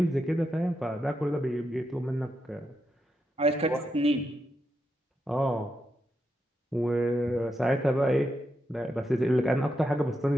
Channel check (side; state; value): both; normal; correlation 0.84